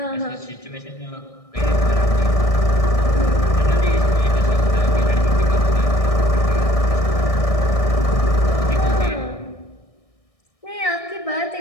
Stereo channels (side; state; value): right; late; 1.6 ms